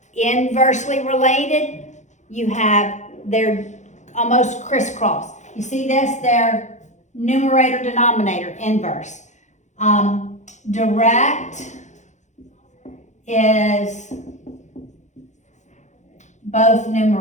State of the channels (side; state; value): right; late; 0.34 ms